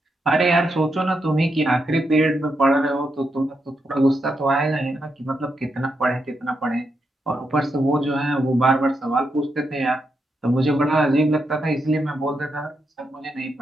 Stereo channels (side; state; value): both; normal; correlation 0.83